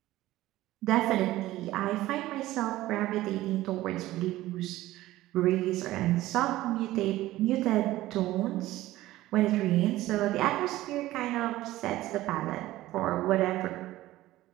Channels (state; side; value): quieter; left; 16.3 dB